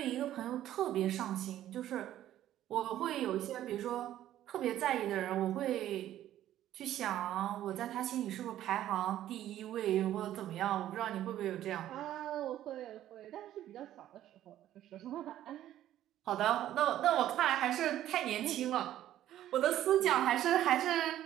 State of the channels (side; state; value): left; quieter; 12.6 dB